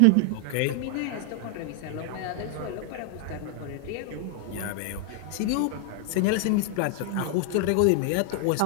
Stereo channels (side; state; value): both; different; correlation 0.00